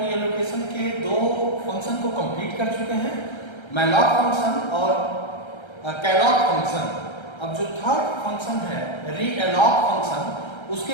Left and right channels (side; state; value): right; late; 1.3 ms